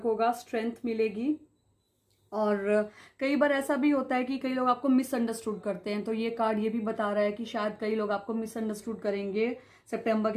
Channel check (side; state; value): both; identical; correlation 1.00